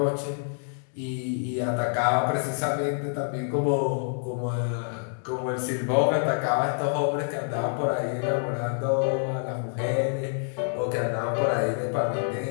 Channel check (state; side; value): silent; right; digital silence